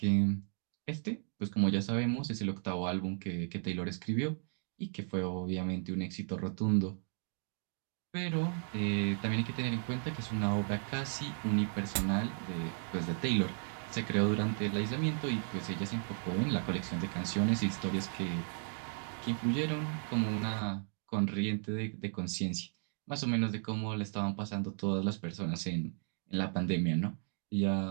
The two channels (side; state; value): left; silent; 54 dB below the other